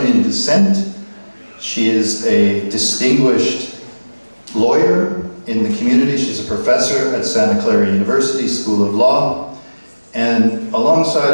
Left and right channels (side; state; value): both; inverted; correlation -1.00